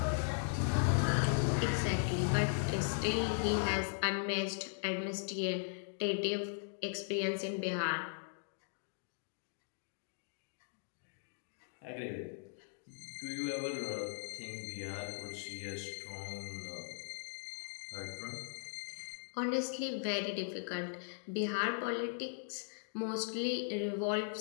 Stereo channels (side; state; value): right; silent; digital silence